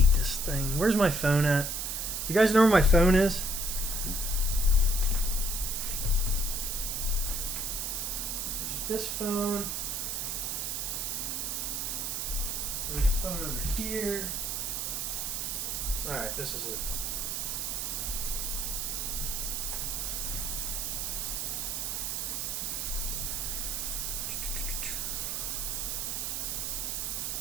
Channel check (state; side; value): noise; right; hiss, 1 dB below the sound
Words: this thing. Where's my phone at? Do you guys know where my phone is? There's this phone. There's a phone over here. Alright, this is it.